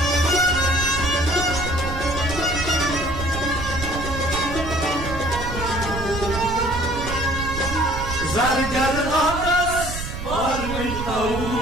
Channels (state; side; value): noise; right; rumble, 7 dB below the sound